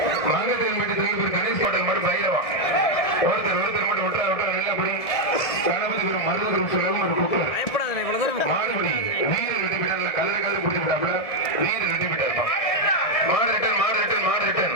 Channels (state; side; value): late; right; 1.7 ms